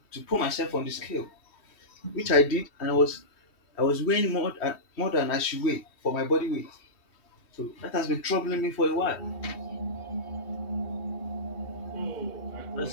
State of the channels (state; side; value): late; right; 3.1 ms